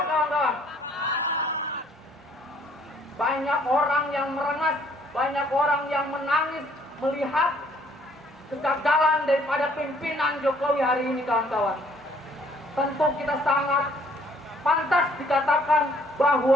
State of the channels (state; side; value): normal; both; correlation 0.62